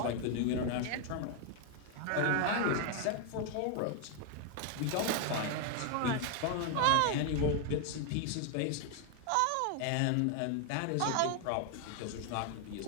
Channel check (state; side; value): different; both; correlation 0.00